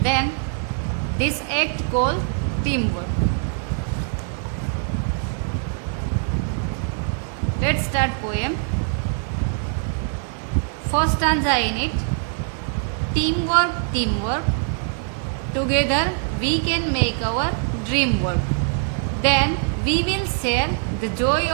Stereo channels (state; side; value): silent; left; 57 dB below the other